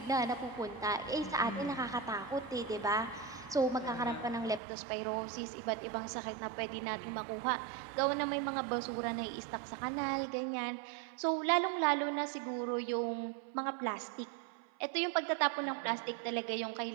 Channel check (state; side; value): drops out; left; at 4.6 s